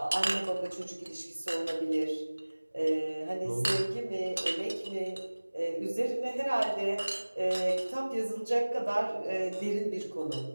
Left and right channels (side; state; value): both; inverted; correlation -1.00